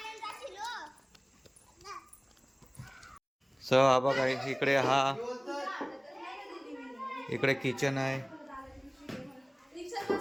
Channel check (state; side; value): identical; both; correlation 1.00